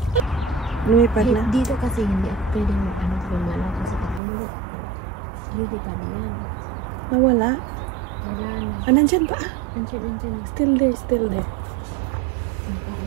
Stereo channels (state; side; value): drops out; left; at 4.2 s